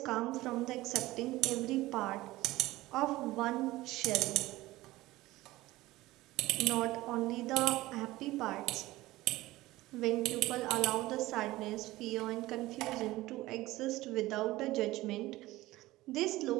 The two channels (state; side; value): quieter; left; 18.0 dB